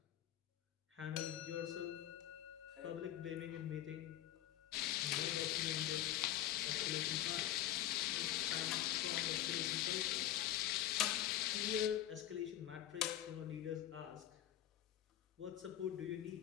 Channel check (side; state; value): right; quieter; 12.4 dB